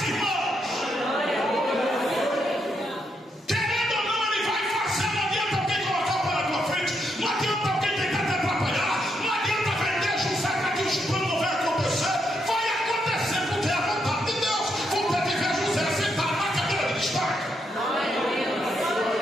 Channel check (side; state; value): both; normal; correlation 0.79